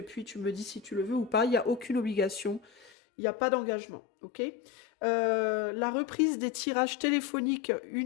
puis tu me dis si tu le veux ou pas. Il n'y a aucune obligation. Il n'y a pas d'engagement. Ok. La reprise des tirages téléphoniques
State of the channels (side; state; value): right; drops out; at 2.9 s